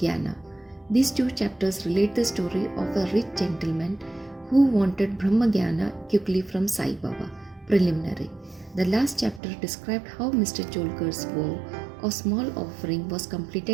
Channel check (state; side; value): drops out; left; at 9.4 s